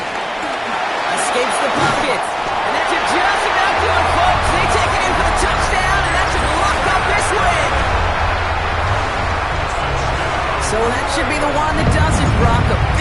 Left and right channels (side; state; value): both; identical; correlation 1.00